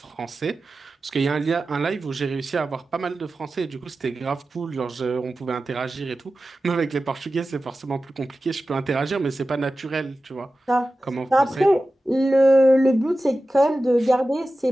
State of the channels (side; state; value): both; normal; correlation 0.94